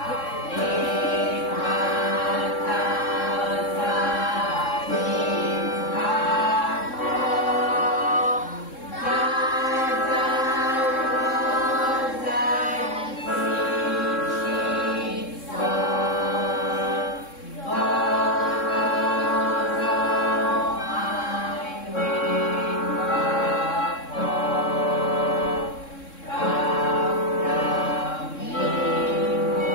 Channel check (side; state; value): right; late; 3.7 ms